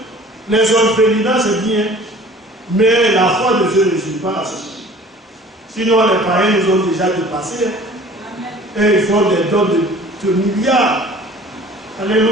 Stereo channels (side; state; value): both; normal; correlation 0.48